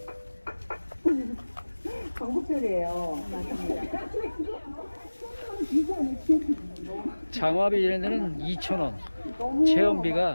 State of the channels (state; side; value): inverted; both; correlation -1.00